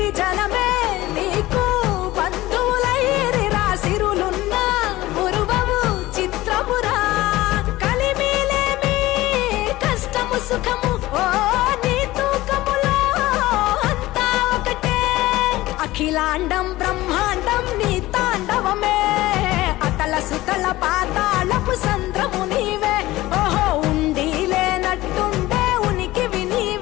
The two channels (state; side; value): quieter; right; 17.7 dB